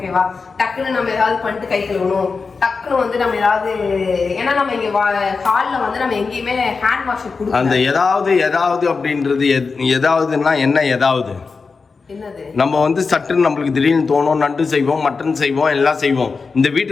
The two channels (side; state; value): right; quieter; 4.7 dB